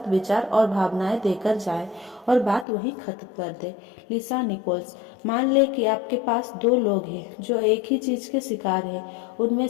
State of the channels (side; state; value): right; drops out; at 2.7 s